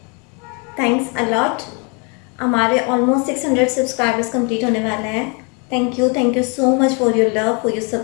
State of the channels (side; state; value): right; quieter; 33.7 dB